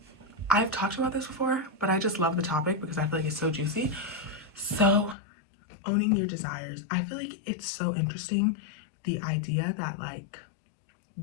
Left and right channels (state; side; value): drops out; right; at 5.2 s